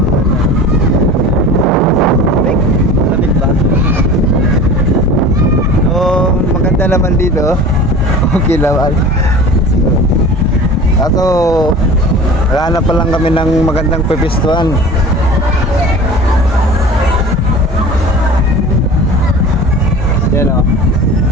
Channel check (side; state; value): both; normal; correlation 0.38